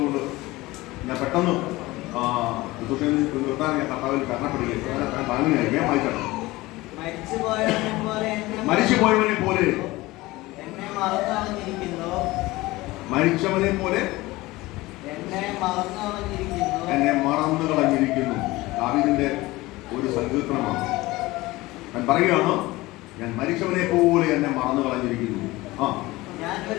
ഞാൻ പെട്ടെന്ന് നിർത്താൻ ഞാൻ കർത്താവിൽ കരണപ്പെടുകയാണ്. താങ്ങുകയായി. വേഗം വായിക്കണം. മരിച്ചുപോയവനെ പോലെ, മരിച്ചവനെ പോലെ എന്നെ മറന്നു കളഞ്ഞിരിക്കുന്നു. ദാവീദിന്റെ ഒരു സങ്കീർത്തനമാണ്. ഞാൻ പറയുകയാണ്, ഞാൻ മരിച്ചവനെ പോലെ എന്നെ മറന്നു കളഞ്ഞിരിക്കുന്നു.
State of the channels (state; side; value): quieter; right; 19.8 dB